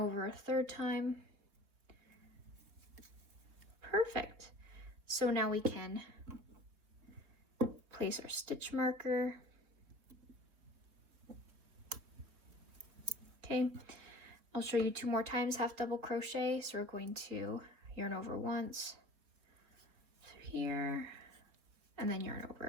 a third time. Perfect. So now we can place our stitch marker. Okay, I'll show you 2 more times half double crochet. So we're going to yarn over once, through here, and then yarn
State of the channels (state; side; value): late; left; 3.7 ms